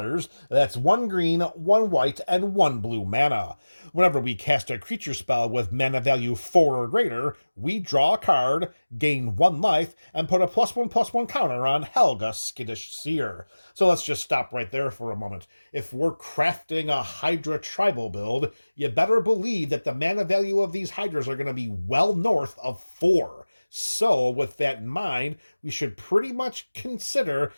That's 1 green, 1 white, and 1 blue mana. Whenever we cast a creature spell with mana value 4 or greater, we draw a card, gain 1 life, and put a +1/+1 counter on Helga, Skittish Seer. So let's just stop right there for a moment. If we're crafting a Hydra tribal build, you better believe that the mana value of these Hydras are going to be well north of 4. So, with that in mind, we should pretty much consider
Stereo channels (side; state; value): both; inverted; correlation -1.00